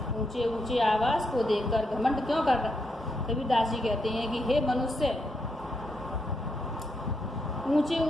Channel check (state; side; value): normal; both; correlation 0.80